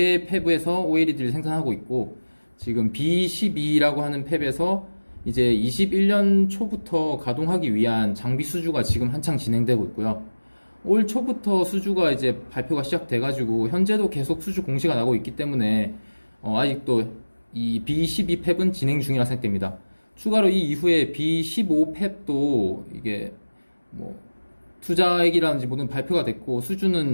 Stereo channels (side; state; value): both; inverted; correlation -1.00